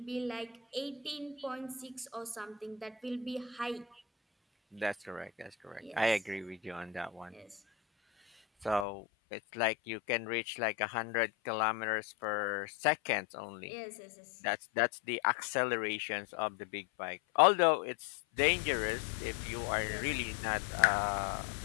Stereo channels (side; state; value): right; drops out; at 8.8 s